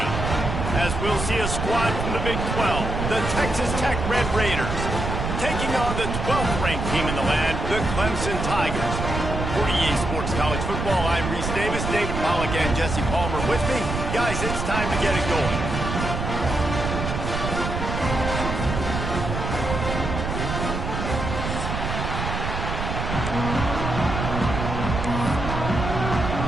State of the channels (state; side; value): noise; right; rumble, 3 dB below the sound